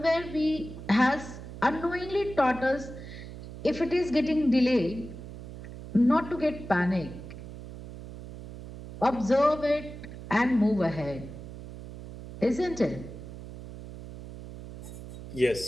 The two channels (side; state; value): right; noise; hum, 12 dB below the sound